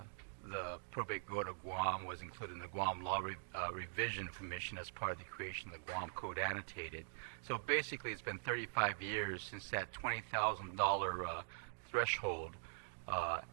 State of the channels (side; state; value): left; silent; digital silence